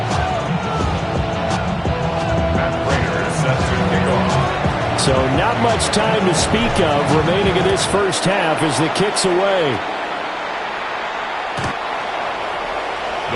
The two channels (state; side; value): identical; both; correlation 1.00